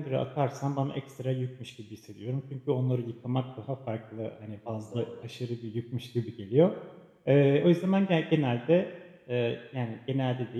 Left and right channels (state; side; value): identical; both; correlation 1.00